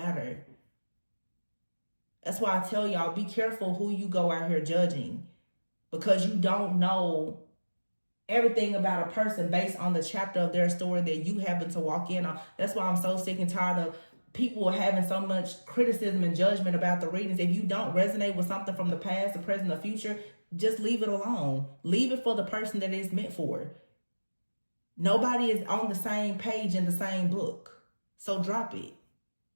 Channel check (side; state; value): both; inverted; correlation -1.00